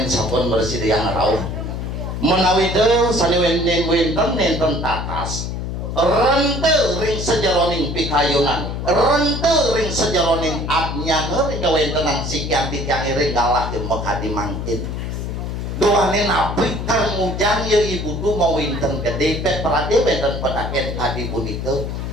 sampun bersih yang rauh menawi teu sani wenten tatas rente ring sejaroning pikayunan rente ring sejaroning abnyange ring kawentenan sekian tijang ring galah mekadi mangkin doanin api kang ujang ya ibu tu mau winten gede pet perade wenten pedaken kadi punika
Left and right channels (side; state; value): left; noise; hum, 4 dB below the sound